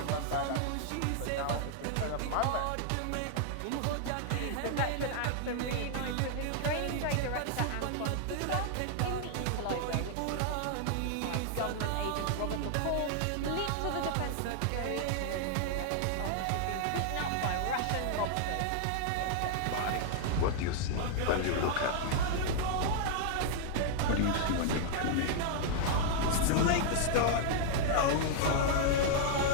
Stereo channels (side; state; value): both; different; correlation 0.00